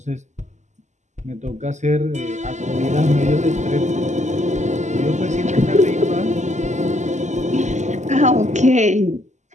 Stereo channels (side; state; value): left; late; 0.34 ms